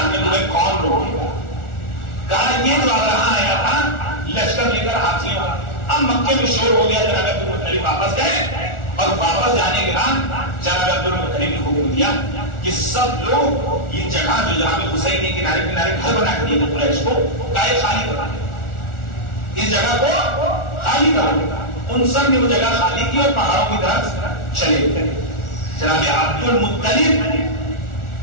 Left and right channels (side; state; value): right; late; 1.4 ms